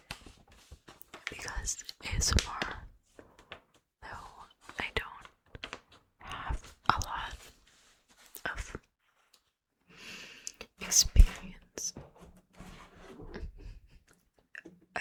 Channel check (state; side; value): identical; both; correlation 1.00